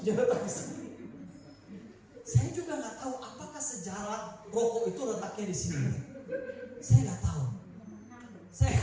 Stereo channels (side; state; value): both; identical; correlation 1.00